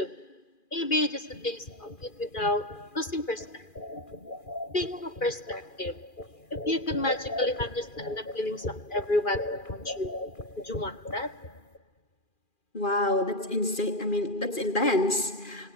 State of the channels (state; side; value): late; right; 2.4 ms